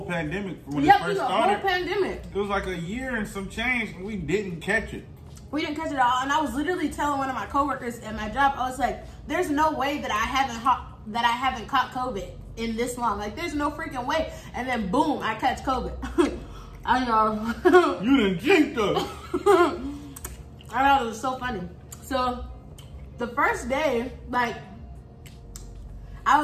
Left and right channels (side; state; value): both; identical; correlation 1.00